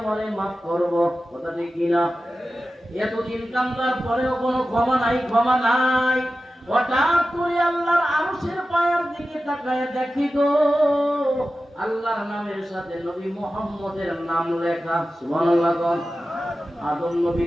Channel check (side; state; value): both; normal; correlation 0.94